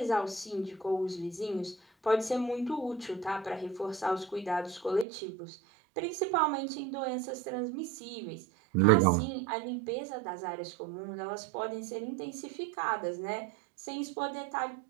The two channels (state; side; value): drops out; left; at 5.1 s